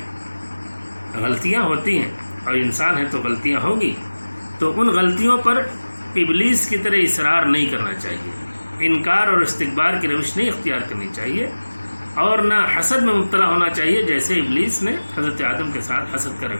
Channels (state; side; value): inverted; both; correlation -1.00